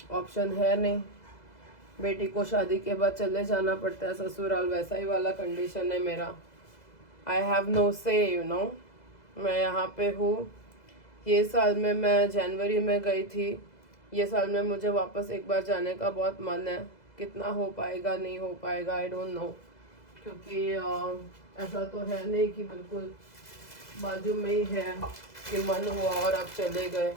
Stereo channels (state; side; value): late; right; 2.0 ms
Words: option है नहीं। बेटी को शादी के बाद चले जाना पड़ता है ससुराल, वैसा ही वाला कंडीशन है मेरा। आई हैव नो से, यू नो। मैं यहाँ पे हूँ। ये साल में मैं जनवरी में गई थी, ये साल में मुझे वापस एक बार जाने का बहुत मन है। कितना हो पाएगा नहीं हो पाएगा आई डोंट नो, क्योंकि ऐसा तो है नहीं कि बिल्कुल बाजू में ही है कि मन हुआ और आप चले गए।